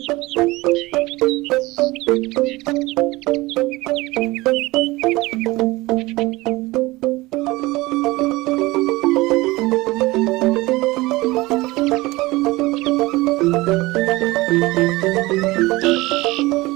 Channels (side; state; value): left; quieter; 20.8 dB